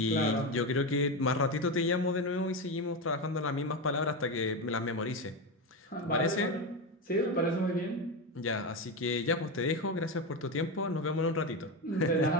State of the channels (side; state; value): both; normal; correlation 0.15